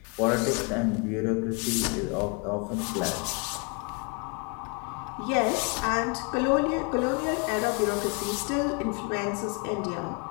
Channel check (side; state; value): right; quieter; 32.7 dB